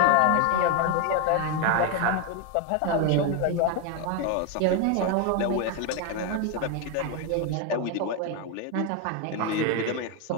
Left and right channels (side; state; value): both; different; correlation 0.01